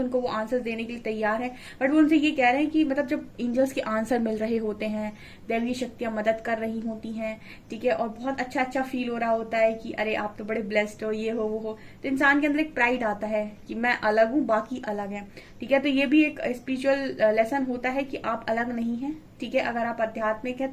वो आंसर्स देने के लिए तैयार हैं। बट वो उनसे ये कह रहे हैं कि मतलब जब एंजल्स के आंसर मिल रहे होते हैं, दैवीय शक्तियां मदद कर रही होती हैं, ठीक है, और बहुत अच्छा अच्छा फील हो रहा होता है कि अरे आप तो बड़े ब्लेस्ड हो, ये हो वो हो, तो इंसान के अंदर एक प्राइड आता है कि मैं अलग हूँ, बाकी अलग है। ठीक है, तो ये भी एक स्पिरिचुअल लेसन होता है कि आप अलग नहीं है। ठीक है, अगर आप आध्यात्मिक है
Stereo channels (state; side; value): identical; both; correlation 1.00